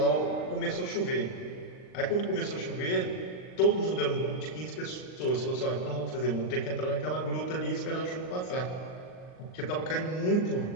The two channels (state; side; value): late; right; 39 ms